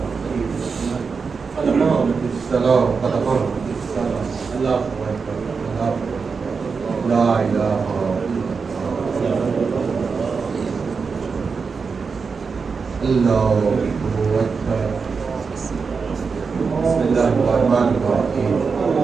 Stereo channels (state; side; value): quieter; left; 5.2 dB